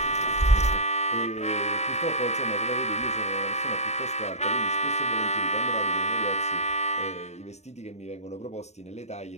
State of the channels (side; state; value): right; late; 0.32 ms